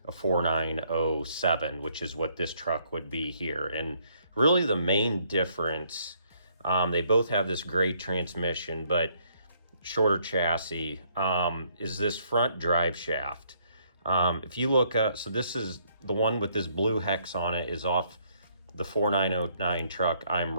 a 4907, which is what this truck would be here. And really the main difference, they both have this great transmission, but shorter chassis, is this front drive shaft. If you look up, so this is the one with this blue hex on it, is off the 4909 truck I'm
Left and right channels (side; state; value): both; inverted; correlation -0.68